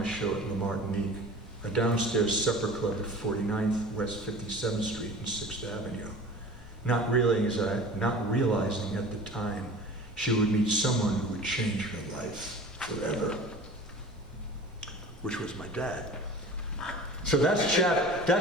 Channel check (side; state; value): both; normal; correlation 0.39